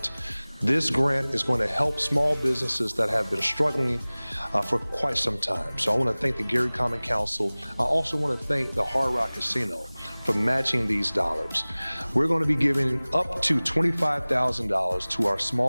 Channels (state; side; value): inverted; both; correlation -1.00